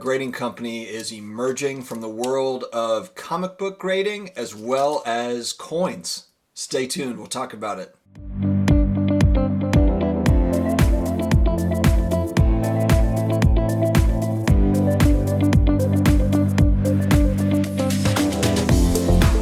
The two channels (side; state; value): both; identical; correlation 1.00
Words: grading company is emerging from the world of comic book grading as well as coins. Stay tuned, we'll talk about it.